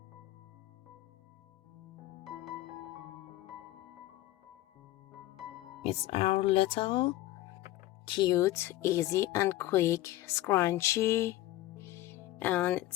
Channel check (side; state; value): right; quieter; 15.6 dB